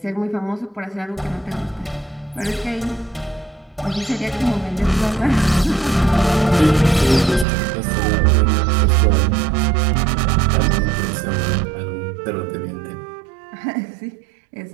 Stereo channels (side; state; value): left; drops out; at 7.5 s